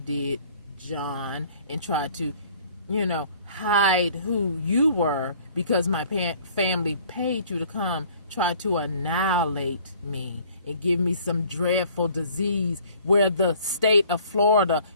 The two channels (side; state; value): both; inverted; correlation -0.54